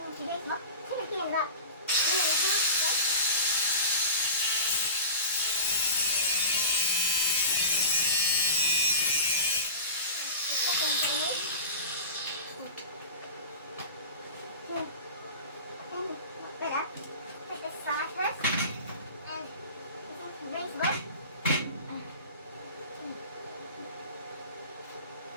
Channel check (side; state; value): both; inverted; correlation -0.32